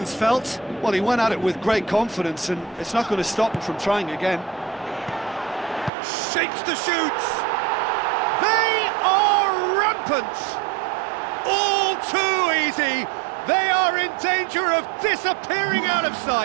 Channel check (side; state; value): left; drops out; at 5.9 s